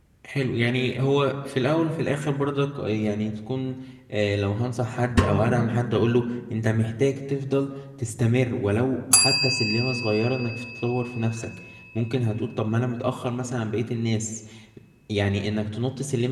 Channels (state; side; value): identical; both; correlation 1.00